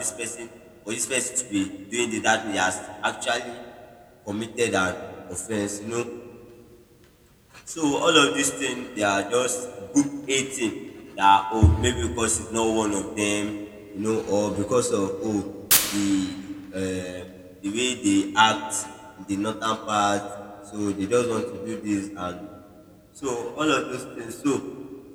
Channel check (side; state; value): both; identical; correlation 1.00